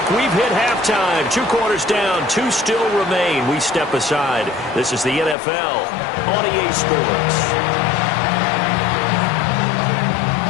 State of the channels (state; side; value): drops out; right; at 5.4 s